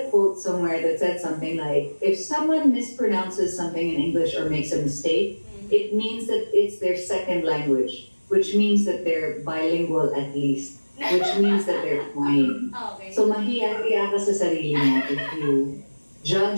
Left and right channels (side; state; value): both; inverted; correlation -1.00